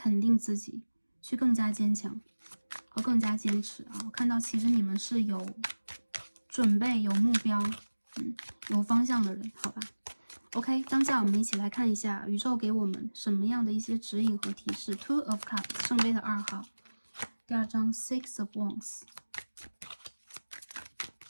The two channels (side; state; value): both; inverted; correlation -1.00